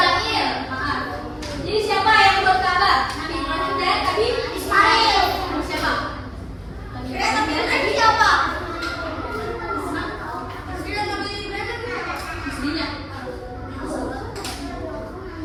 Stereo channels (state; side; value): identical; both; correlation 1.00